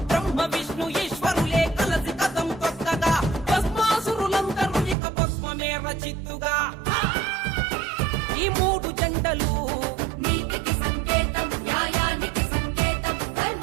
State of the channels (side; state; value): left; drops out; at 5.0 s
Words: బ్రహ్మ విష్ణు ఈశ్వరులే కలసి కథం తొక్కగా భస్మాసురులందరూ ఇక భస్మమే రచిత్తుగా ఈ మూడు జెండలు నీతికి సంకేతం, న్యాయానికి సంకేతం,